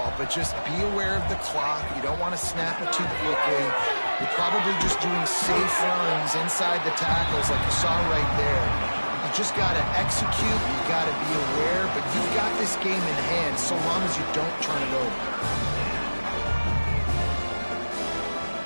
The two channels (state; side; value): inverted; both; correlation -1.00